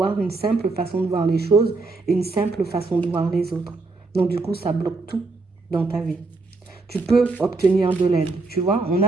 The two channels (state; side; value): quieter; left; 3.6 dB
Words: une simple façon de voir les choses et une simple façon de voir les autres. Donc, du coup, ça bloque tout dans ta vie. tu peux obtenir de l'aide, tu vois. On